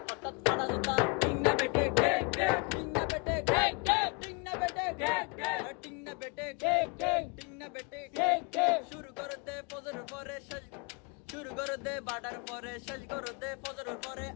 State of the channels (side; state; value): right; quieter; 31.4 dB